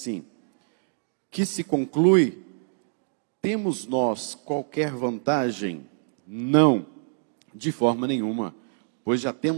que se conclui, temos nós qualquer vantagem? Não, de forma nenhuma, pois já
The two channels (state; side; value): silent; left; digital silence